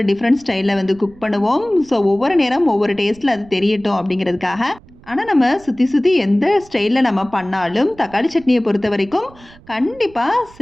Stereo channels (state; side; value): noise; right; rumble, 24 dB below the sound